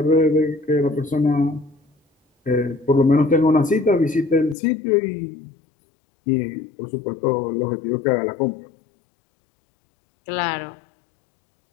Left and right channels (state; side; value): drops out; right; at 4.5 s